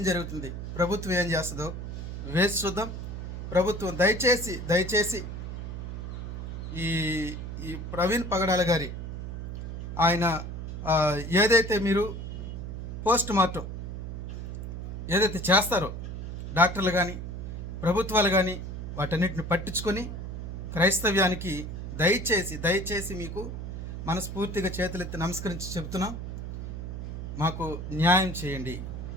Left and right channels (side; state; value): right; noise; hum, 6 dB below the sound